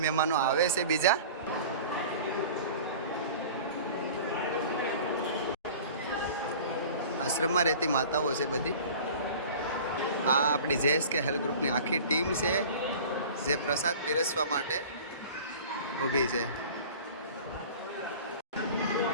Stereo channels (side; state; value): both; inverted; correlation -0.41